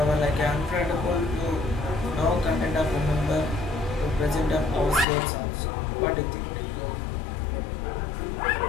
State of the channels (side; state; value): right; drops out; at 5.1 s